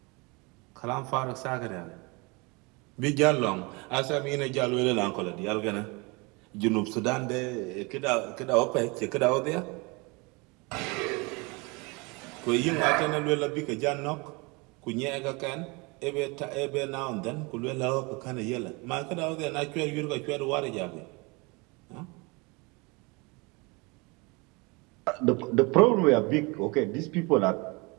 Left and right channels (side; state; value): left; quieter; 27.6 dB